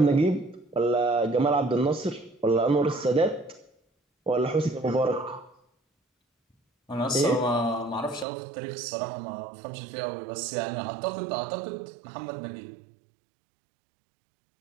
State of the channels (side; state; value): left; drops out; at 8.2 s